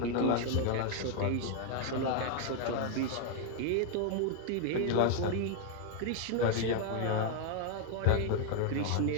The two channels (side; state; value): both; different; correlation 0.00